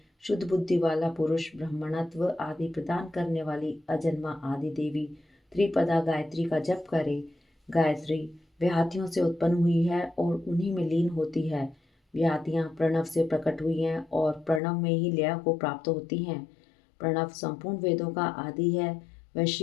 शुद्ध बुद्धि वाला पुरुष ब्रह्मणत्व आदि प्रदान करने वाली अजन्मा आदि देवी त्रिपदा गायत्री का जप करे। गायत्री व्याहतियों से उत्पन्न हुई है और उन्हीं में लीन होती है। व्याहतियाँ प्रणव से प्रकट हुई हैं और प्रणव में ही लय को प्राप्त होती हैं। प्रणव संपूर्ण वेदों का आदि है। वह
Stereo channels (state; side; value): drops out; right; at 14.6 s